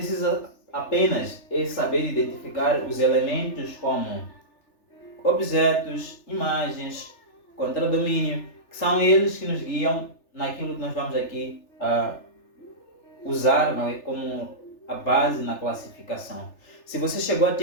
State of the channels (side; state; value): right; late; 3.4 ms